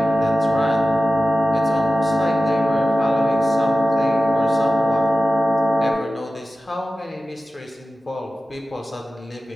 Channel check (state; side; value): normal; both; correlation 0.94